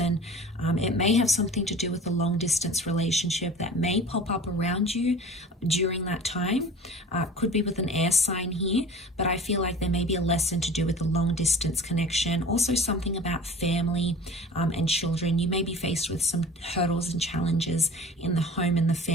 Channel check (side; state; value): both; normal; correlation 0.40